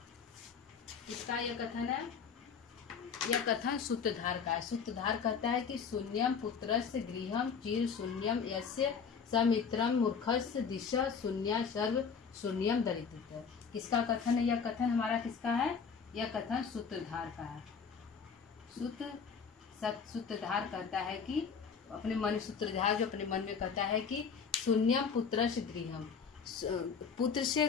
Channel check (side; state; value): right; quieter; 6.1 dB